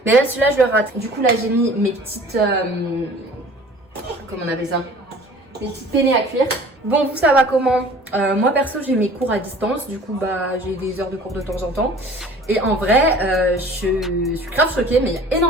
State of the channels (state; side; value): normal; both; correlation 0.47